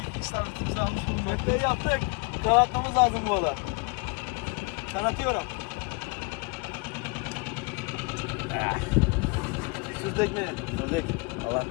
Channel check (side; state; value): right; quieter; 29.1 dB